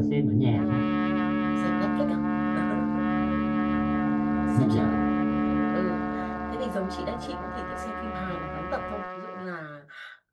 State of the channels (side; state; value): both; identical; correlation 1.00